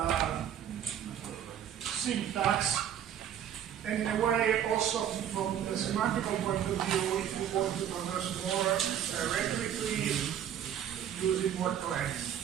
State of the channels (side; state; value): left; quieter; 9.7 dB